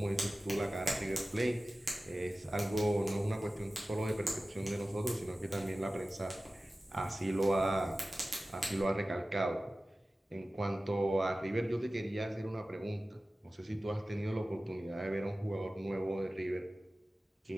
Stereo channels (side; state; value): both; normal; correlation 0.96